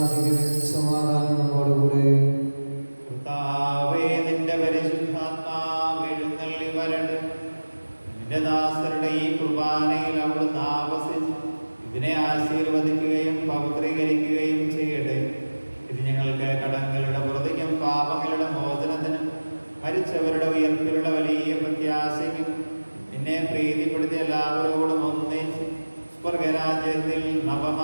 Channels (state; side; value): inverted; both; correlation -1.00